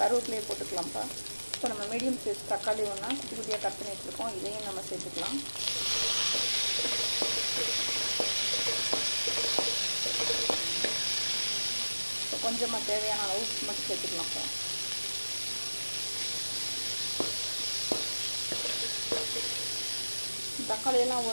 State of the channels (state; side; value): inverted; both; correlation -1.00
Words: போட்டுக்கலாம்ப்பா. இப்போ நம்ம மீடியம் சைஸ் தக்காளி ஒன்றா குட்டி குட்டியாக கட் பண்ணி வச்சுருக்கோம். இதையும் நம்ம சேர்த்துக்கலாம். இப்போ கொஞ்சமாக தேவையான அளவு உப்பு மட்டும் சேர்த்துக்கலாம்ப்பா. தக்காளியெல்லாம்